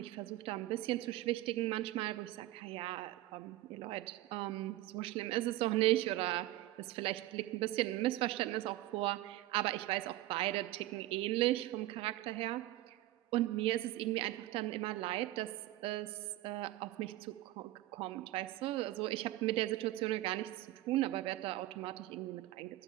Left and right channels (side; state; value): left; quieter; 16.4 dB